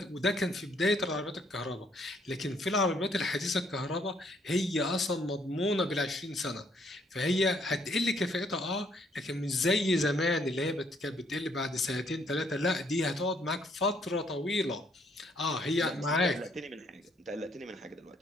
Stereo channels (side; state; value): both; normal; correlation 0.68